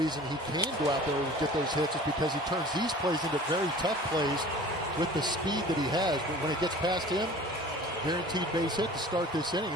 reason he can go out there and get those hits is because he turns these plays into very tough plays with the speed that he has. But when it gets past him, guaranteed base hit to start this inning.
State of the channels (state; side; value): normal; both; correlation 0.44